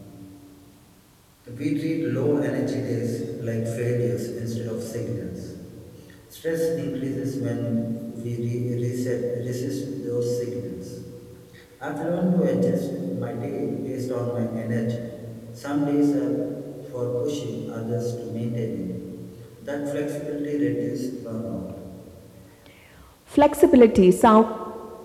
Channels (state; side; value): identical; both; correlation 1.00